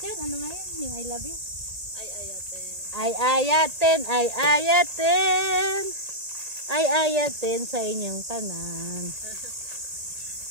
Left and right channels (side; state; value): left; late; 1.8 ms